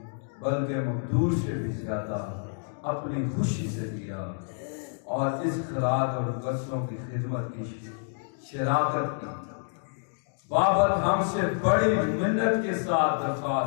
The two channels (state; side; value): silent; right; digital silence